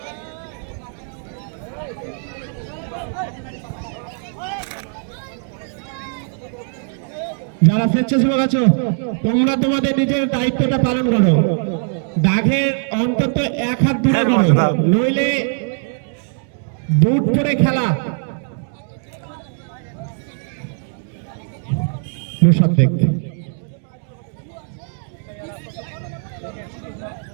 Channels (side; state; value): left; silent; 57 dB below the other